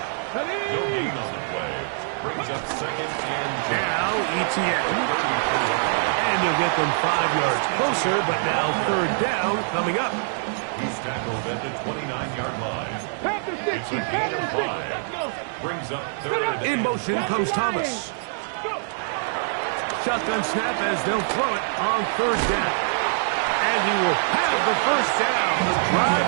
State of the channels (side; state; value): left; silent; digital silence